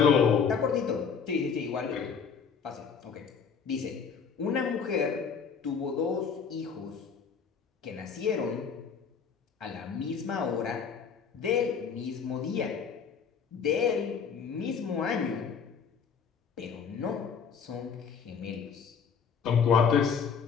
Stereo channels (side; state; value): right; quieter; 6.3 dB